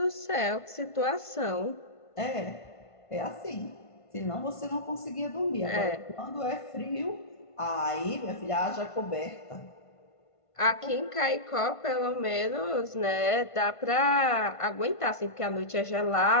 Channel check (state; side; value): late; right; 1.5 ms